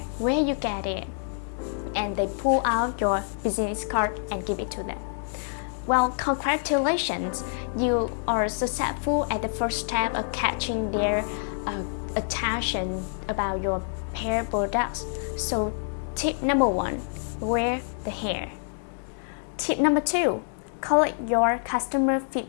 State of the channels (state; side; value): silent; right; 60 dB below the other